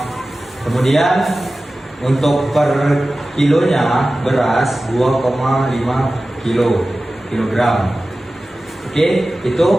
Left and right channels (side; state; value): both; normal; correlation 0.96